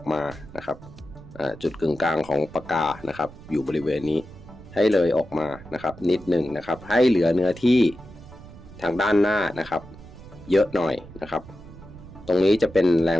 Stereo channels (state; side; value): noise; right; rumble, 18 dB below the sound